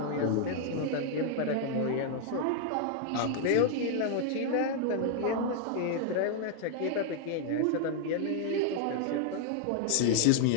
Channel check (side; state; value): both; different; correlation 0.00